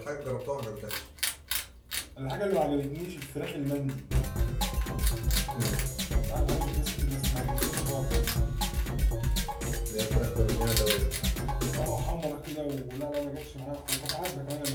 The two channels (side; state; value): both; identical; correlation 1.00